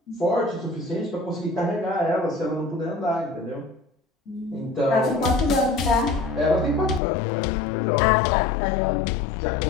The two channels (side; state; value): right; drops out; at 7.0 s